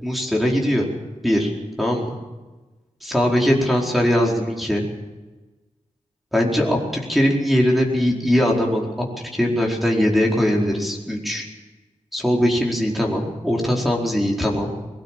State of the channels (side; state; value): both; normal; correlation 0.89